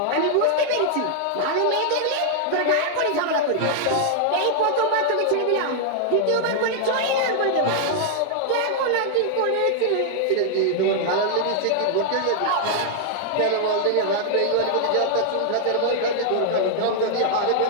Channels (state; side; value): different; both; correlation -0.01